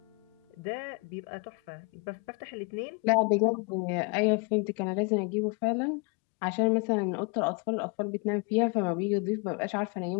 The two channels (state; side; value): quieter; right; 33.6 dB